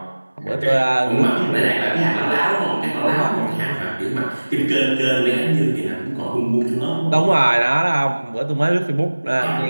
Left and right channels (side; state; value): both; inverted; correlation -1.00